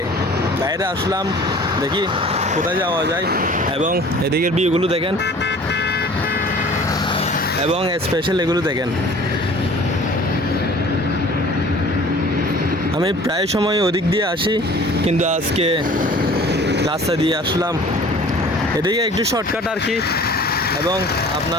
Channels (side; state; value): both; normal; correlation 0.47